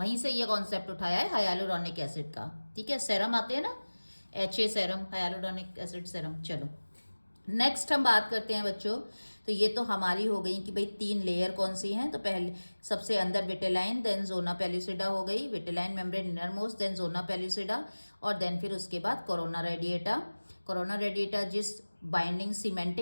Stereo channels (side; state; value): both; inverted; correlation -1.00